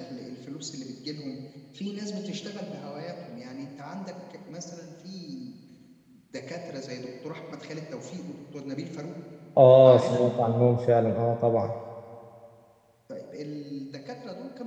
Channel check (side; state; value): both; identical; correlation 1.00